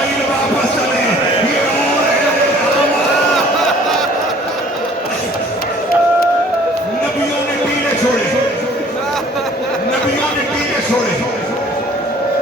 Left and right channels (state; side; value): normal; both; correlation 0.53